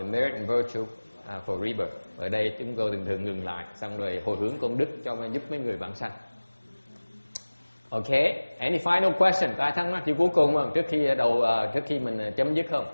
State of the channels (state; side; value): inverted; both; correlation -1.00